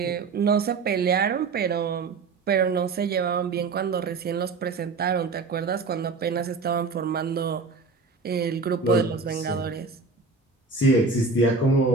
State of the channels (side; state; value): left; quieter; 4.4 dB